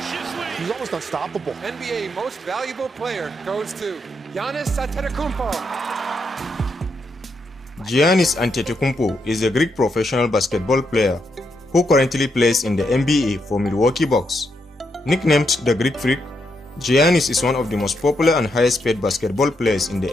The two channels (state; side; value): normal; both; correlation 0.80